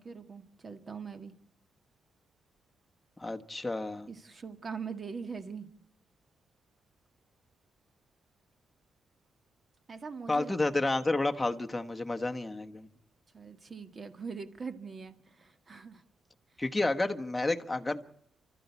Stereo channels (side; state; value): both; normal; correlation 0.95